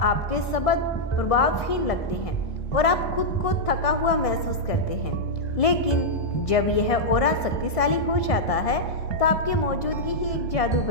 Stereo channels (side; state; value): right; late; 1.6 ms